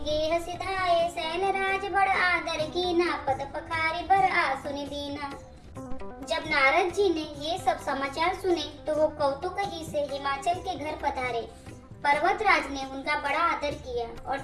गेह सिधाए सैन राज बड़ आदर कीना पद पखारी बर आसुनि दीना। जब नारद जी ने ये सब समाचार सुने तो वो कौतुक ही से हिमाचल के घर पधारे। पर्वत राज ने उनका बड़ा आदर किया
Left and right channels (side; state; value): both; identical; correlation 1.00